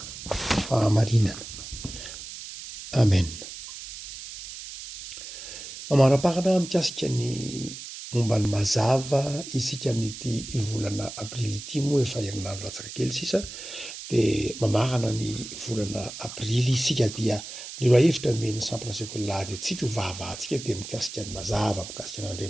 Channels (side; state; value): right; noise; hiss, 11 dB below the sound